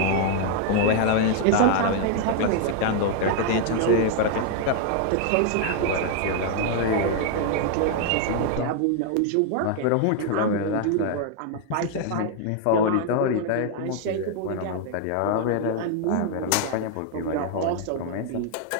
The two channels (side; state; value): both; different; correlation 0.00